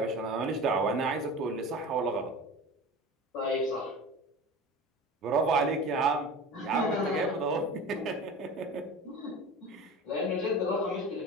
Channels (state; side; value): normal; both; correlation 0.34